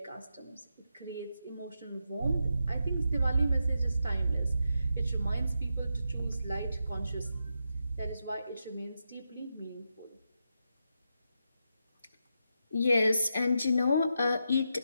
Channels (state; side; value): inverted; both; correlation -0.85